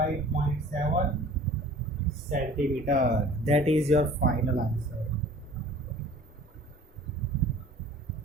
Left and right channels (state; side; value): normal; both; correlation 0.47